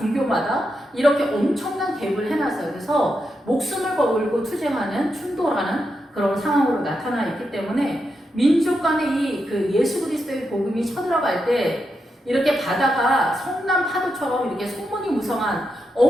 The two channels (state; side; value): normal; both; correlation 0.85